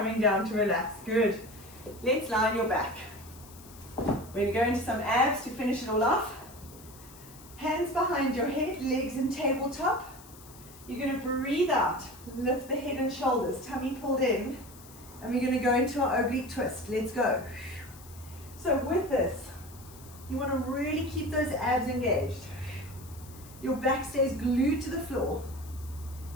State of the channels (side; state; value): left; noise; hiss, 20 dB below the sound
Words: down to relax. Good. Let's lie on your back. We're going to go into some abs to finish it all off. Hands behind your head, legs in tabletop. You're going to breathe out. Lift the head and shoulders. Tummy pulled in. And we're going to go into our oblique twist. Let's go. So with this, you want to really keep those abs engaged. Your back stays glued to the floor.